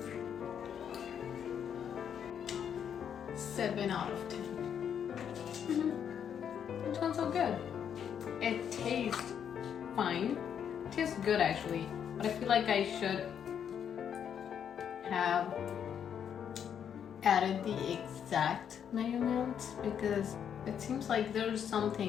Seven out of 10. It sounds so good. It tastes fine. It tastes good actually, but I feel like I should have added the exact measurements, because it seems like there's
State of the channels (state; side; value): quieter; right; 8.4 dB